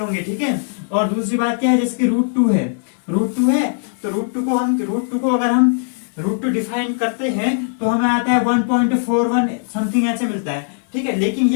ठीक है, और दूसरी बात क्या है, जैसे कि रूट टू है, रूट टू है तो रूट टू को अगर हम रूट टू डिफाइन करते हैं तो हमें आता है 1.41 समथिंग ऐसे मिलता है। ठीक है, लेकिन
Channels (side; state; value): right; silent; 66 dB below the other